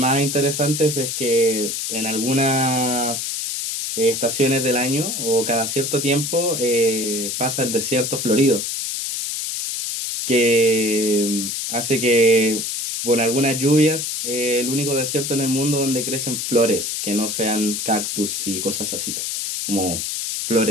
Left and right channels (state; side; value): noise; left; hiss, 3 dB below the sound